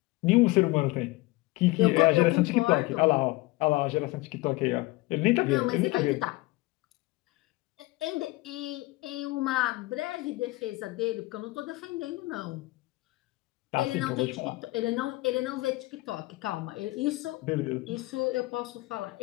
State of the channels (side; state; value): right; quieter; 20.9 dB